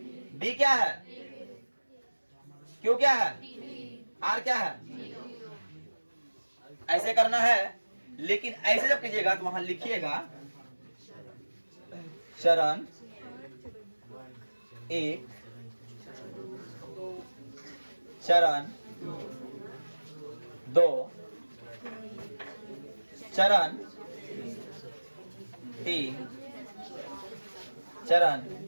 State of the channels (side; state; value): both; inverted; correlation -1.00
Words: बी क्या है, क्यू क्या है, आर क्या है। ऐसे करना है, लेकिन ऐसे जब कीजिएगा तो वहां लिखिएगा चरण 1, चरण 2, चरण 3, चरण